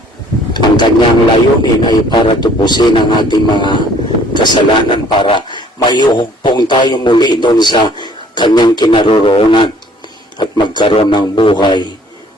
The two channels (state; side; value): normal; both; correlation 0.57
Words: Ang kanyang layunin ay para tubusin ang ating mga kasalanan, para mayuhugpong tayo muli doon sa kanyang kinaroroonan at magkaroon ng buhay